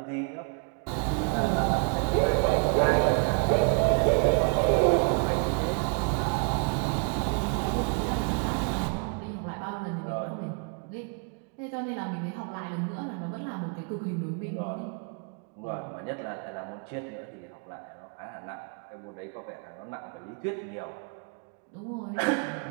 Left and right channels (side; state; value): left; quieter; 37.1 dB